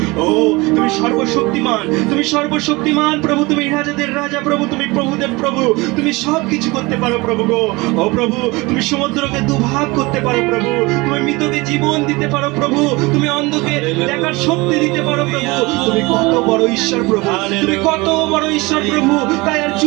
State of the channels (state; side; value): quieter; left; 23.7 dB